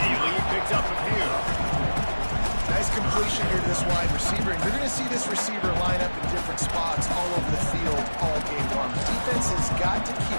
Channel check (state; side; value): inverted; both; correlation -1.00